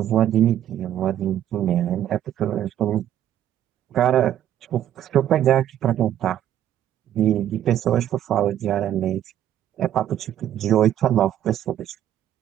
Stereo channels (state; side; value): quieter; left; 11.3 dB